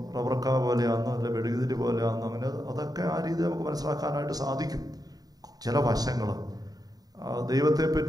റബ്ബർക്ക പോലെയാണെന്നോ അല്ല വെടുകുതിരി പോലെയാണെന്നോ അങ്ങനെ അതൊക്കെ ആ രീതി നമുക്ക് മനസ്സിലാക്കാനായിട്ട് സാധിക്കും. ചില വശങ്ങൾ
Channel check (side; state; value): left; late; 0.18 ms